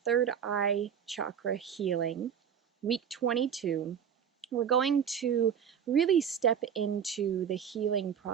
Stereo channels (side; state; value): left; quieter; 8.1 dB